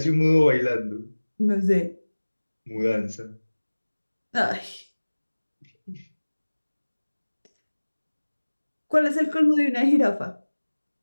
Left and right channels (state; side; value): inverted; both; correlation -1.00